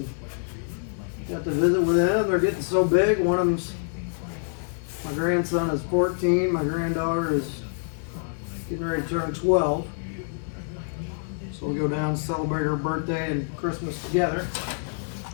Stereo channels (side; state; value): right; silent; 57 dB below the other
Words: got to visit with them. They're getting so big. One of them's, my grandson is 14. My granddaughter is getting ready to turn 12. So we'll go down and celebrate her birthday and Christmas together.